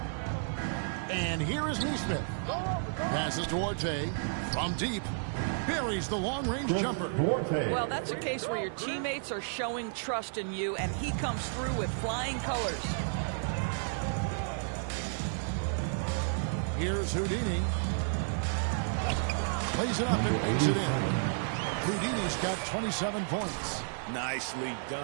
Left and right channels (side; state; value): left; silent; 56 dB below the other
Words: And here is Neesmith. Passes to Orte from deep. Buries the long-range jumper. Well, that's a case where your teammates are showing trust in you, and he comes through with flying colors. Here's Houdini. Plays it up and makes it in. Houdini's got 27 points. Nicely